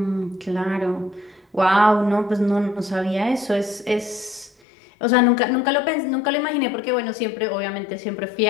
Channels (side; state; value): right; drops out; at 4.5 s